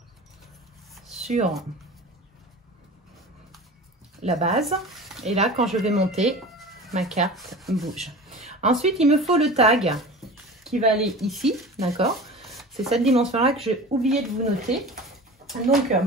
sur la base. Et là, quand je vais monter, ma carte bouge. Ensuite, il me faut le tag qui va aller ici, d'accord? C'est cette dimension-là que j'ai oublié de vous noter. Donc,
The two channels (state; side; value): normal; both; correlation 0.36